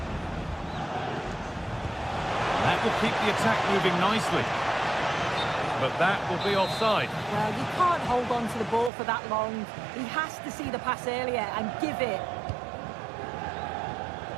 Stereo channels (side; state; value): left; drops out; at 8.9 s